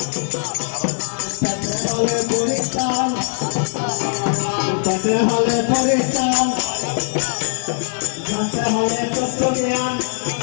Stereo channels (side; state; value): right; silent; digital silence